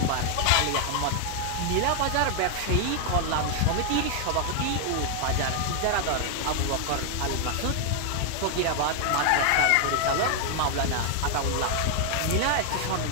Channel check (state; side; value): different; both; correlation 0.00